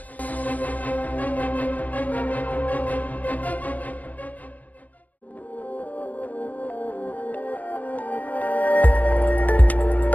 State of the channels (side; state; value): right; late; 0.077 ms